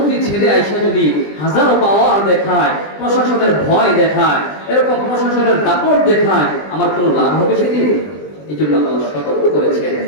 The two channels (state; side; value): late; right; 20 ms